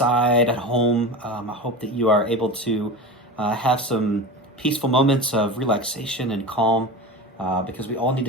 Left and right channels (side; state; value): both; normal; correlation 0.28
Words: at home. I hope that you are able to have some peaceful moments of relaxation and calm because we all need